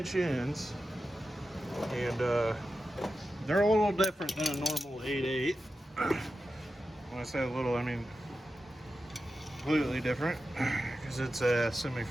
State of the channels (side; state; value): both; normal; correlation 0.91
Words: ends, and they're a little different than a normal 8/8. When I say a little, I mean completely different, because it's a